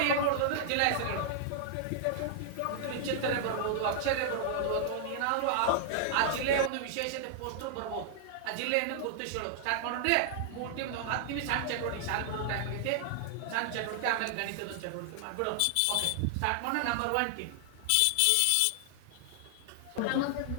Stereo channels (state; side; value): different; both; correlation -0.01